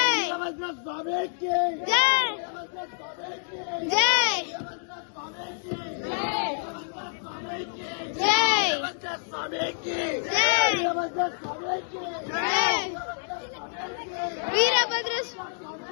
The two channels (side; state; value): right; silent; digital silence